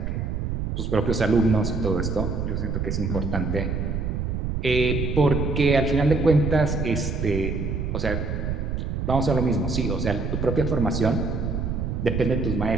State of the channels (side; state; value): right; noise; rumble, 2 dB below the sound